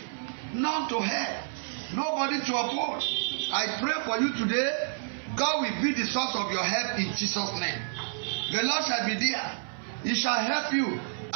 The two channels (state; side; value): silent; left; 55 dB below the other